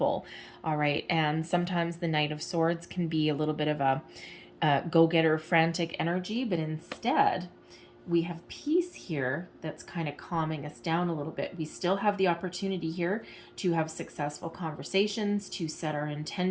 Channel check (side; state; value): both; identical; correlation 1.00